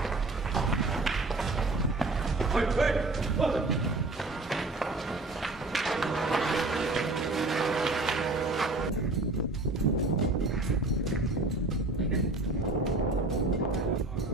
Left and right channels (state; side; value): quieter; left; 3.1 dB